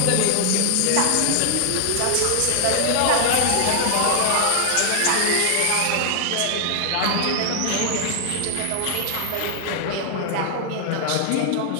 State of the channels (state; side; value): different; both; correlation 0.00